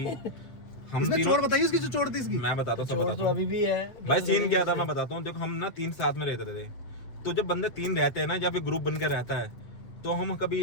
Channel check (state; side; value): late; right; 8.0 ms